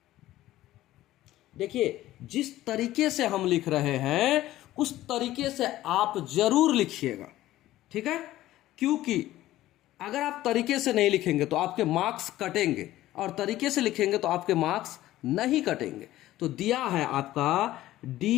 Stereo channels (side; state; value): right; quieter; 15.1 dB